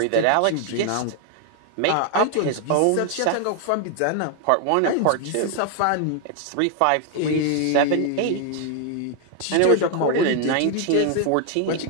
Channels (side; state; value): both; different; correlation 0.00